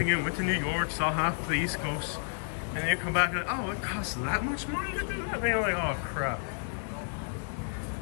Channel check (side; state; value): right; silent; digital silence